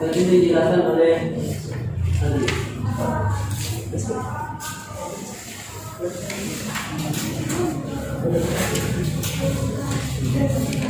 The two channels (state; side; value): identical; both; correlation 1.00